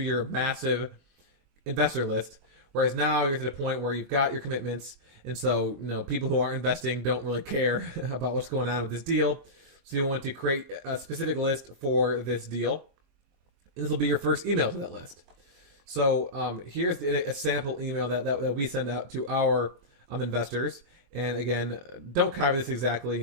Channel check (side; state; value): left; late; 23 ms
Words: massive investor list. Whereas now you're to the point where you've got your commitments, and so people who are investing don't really care about what's going on with this deal. So you want to create a specific list for this deal, and this will be your first email to that list. So here's a sample email that we send out to our investors. And again, don't copy this exactly.